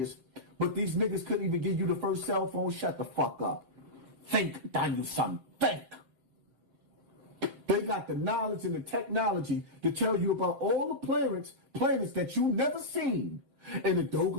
but these niggas couldn't even give you the first cell phone. Shut the fuck up. Think, Daniel son. Think. They got the knowledge and the technology to tell you about all the planets that you never seen. And the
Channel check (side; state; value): left; late; 7.7 ms